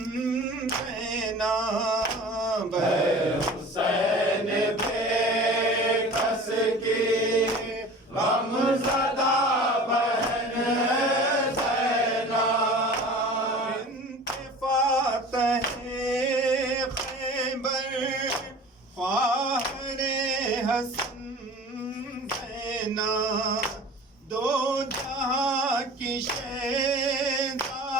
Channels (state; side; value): normal; both; correlation 0.40